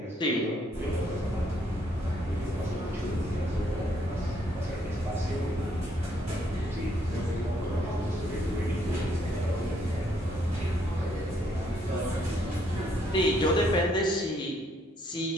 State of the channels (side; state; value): both; normal; correlation 0.70